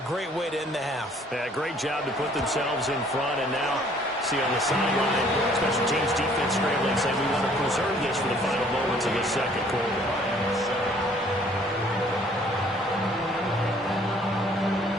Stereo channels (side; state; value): both; normal; correlation 0.59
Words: great way to end the half. Yeah, great job to put themselves in front, and now see on the sideline, special teams defense scrambling, saying we want to preserve this for the final moments of the second quarter.